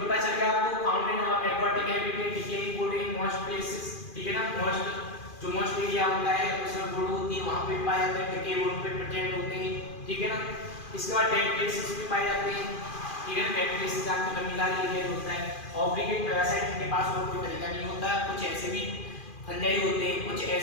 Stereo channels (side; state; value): right; late; 2.4 ms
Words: चल गया आपको, found in aquatic habitat, decaying would in most places. ठीक है ना। मोस्ट एरिया होता है उसमें वुड होती है, वहां पे पाए जाते हैं, डिके वुड पे प्रेजेंट होते हैं। ठीक है ना। इसके बाद डेड प्लेसेस भी पाए जाते हैं। ठीक है। डेड प्लेसेस आपके लमीलार एरिया होता है। ऑब्लिगेट पैरासाइट के पास और कोई तरीका नहीं होता। कुछ ऐसे भी फंजाई होते हैं, कुछ